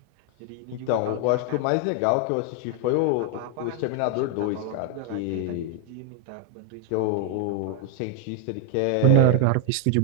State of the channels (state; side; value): different; both; correlation 0.00